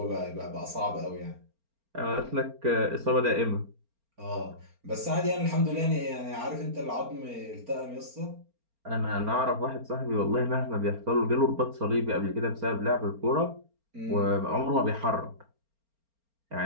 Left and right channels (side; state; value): left; late; 4.4 ms